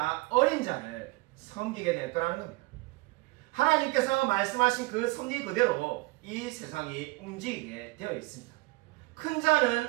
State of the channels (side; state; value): left; quieter; 23.5 dB